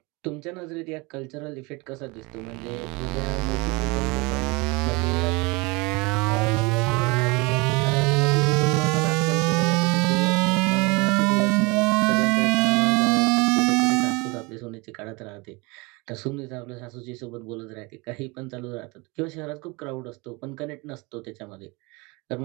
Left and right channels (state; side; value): quieter; left; 26.4 dB